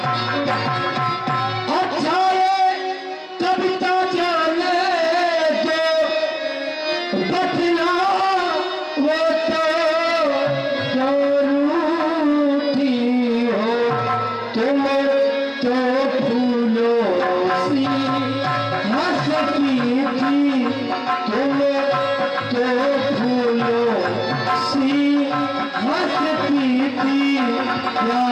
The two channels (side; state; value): both; identical; correlation 1.00